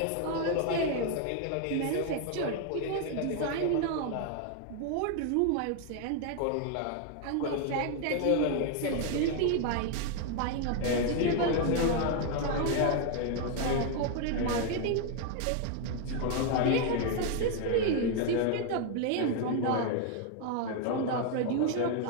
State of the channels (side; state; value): both; different; correlation 0.01